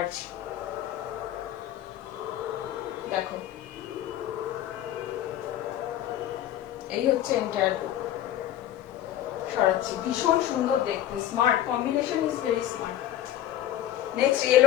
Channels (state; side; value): quieter; right; 12.4 dB